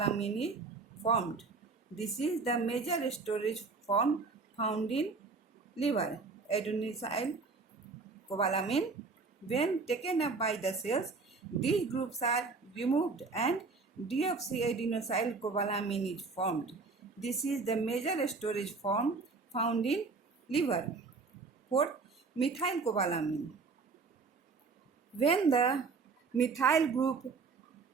is formed. This is the major storage form found in liver. Adenosylcobalamin, when taken up by the cells, these groups are removed and deoxyadenosylcobalamin is formed. This is the major storage form found in liver. Fourth, methylcobalamin. When the methyl group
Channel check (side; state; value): left; quieter; 4.4 dB